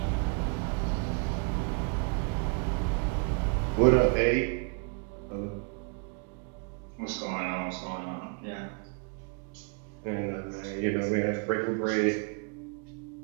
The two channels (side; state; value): left; quieter; 35.9 dB